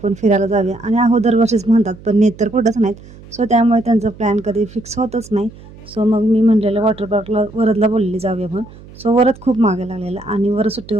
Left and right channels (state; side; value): noise; right; hum, 20 dB below the sound